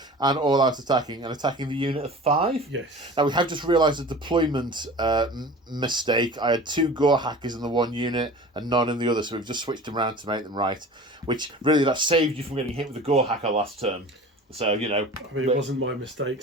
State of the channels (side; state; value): both; normal; correlation 0.39